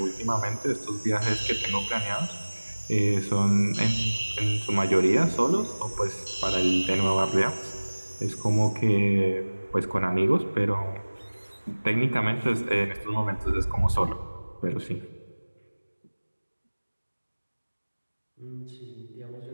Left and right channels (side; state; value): both; inverted; correlation -1.00